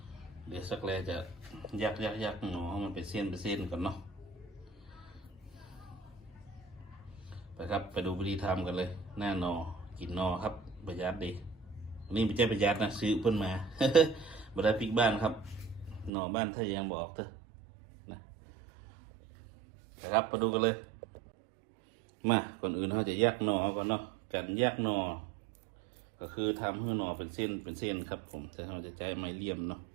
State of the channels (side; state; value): left; drops out; at 16.1 s